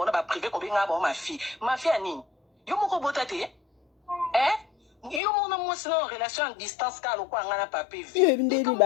ba privé ko benga ba ma fille. Ma fille ani. Yo moko botate. Yo mona mo sino relation en distance ka lo kwa ngana pape vie. Yo ndeni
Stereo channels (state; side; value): drops out; right; at 5.2 s